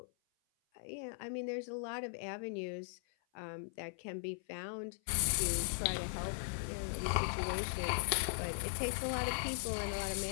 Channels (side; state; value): right; silent; 52 dB below the other